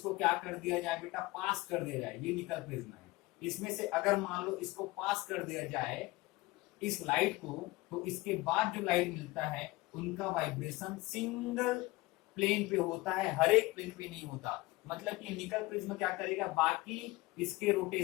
क्या कर दिया जाए बेटा? पास कर दिया जाए। ये निकल प्रिज्म है, इसमें से अगर मान लो इसको पास कर दिया जाए इस लाइट को, तो इसके बाद जो लाइट मिलता है उनका वाइब्रेशन सिंगल प्लेन पे होता है, हर एक प्लेन पे नहीं होता। मतलब कि निकल प्रिज्म क्या करेगा? बाकी इसके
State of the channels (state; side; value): quieter; right; 20.9 dB